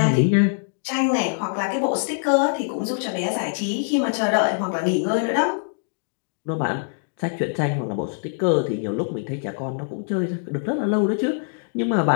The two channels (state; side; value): silent; right; digital silence